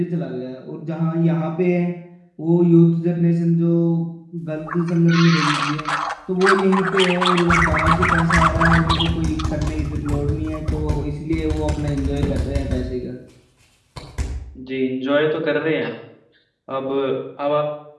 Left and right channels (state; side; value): identical; both; correlation 1.00